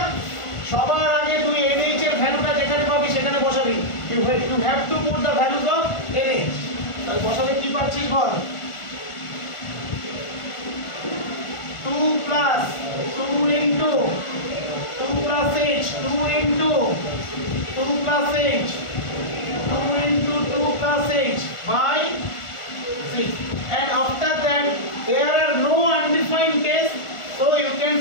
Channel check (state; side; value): late; right; 1.4 ms